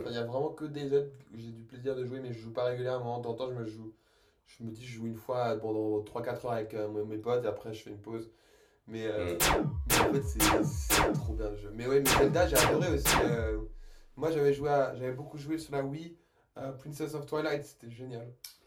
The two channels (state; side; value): identical; both; correlation 1.00